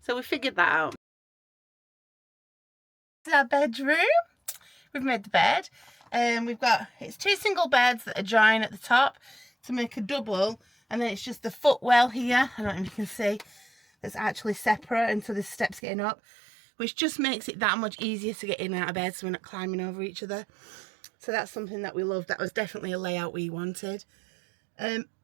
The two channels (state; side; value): drops out; left; at 15.8 s